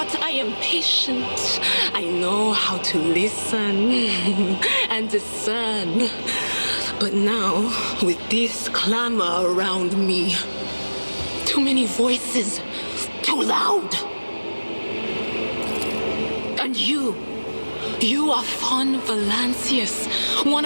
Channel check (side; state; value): both; inverted; correlation -1.00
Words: I am patient. I know how to listen and discern. But now, with this clamor around me, too many voices, too loud. And you are von Valancius, one